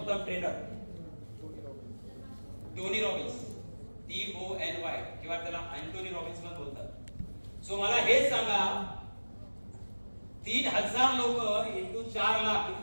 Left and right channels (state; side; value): inverted; both; correlation -1.00